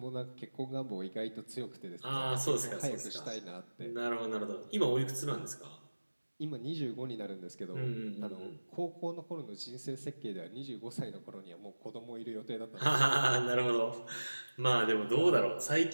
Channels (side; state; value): both; inverted; correlation -1.00